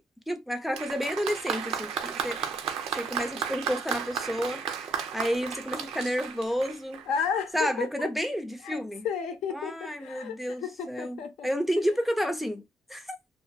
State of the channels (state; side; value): normal; both; correlation 0.74